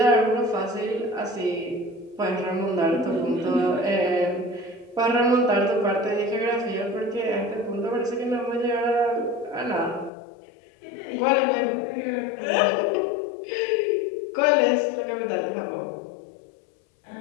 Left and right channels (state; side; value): drops out; right; at 10.1 s